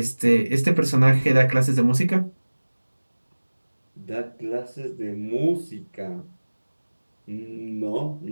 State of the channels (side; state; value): both; inverted; correlation -1.00